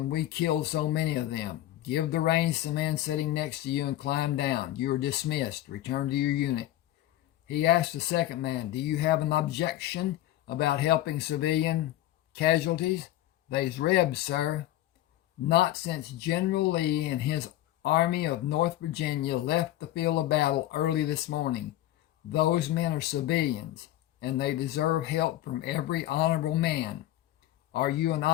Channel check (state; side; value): quieter; right; 14.1 dB